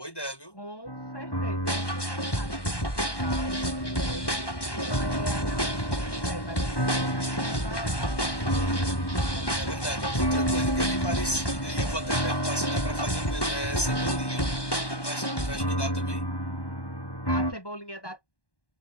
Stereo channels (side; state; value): right; late; 1.1 ms